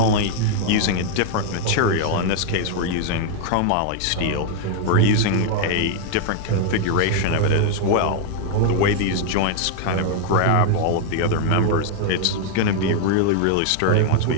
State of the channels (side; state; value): both; different; correlation 0.00